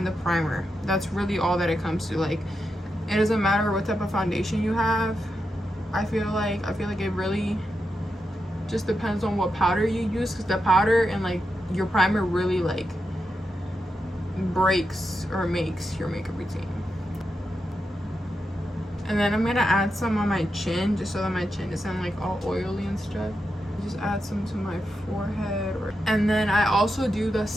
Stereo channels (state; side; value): normal; both; correlation 0.87